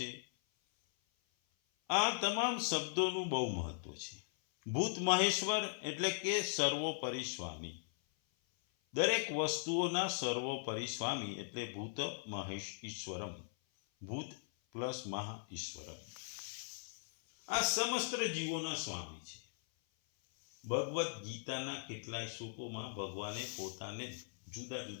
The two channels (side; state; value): right; silent; 52 dB below the other